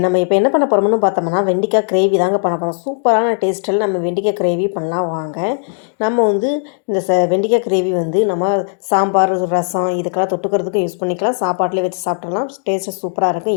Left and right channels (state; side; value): silent; right; digital silence